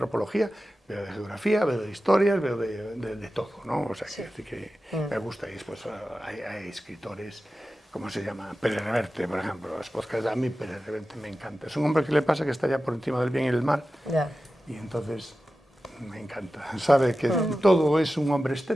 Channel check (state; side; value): normal; both; correlation 0.94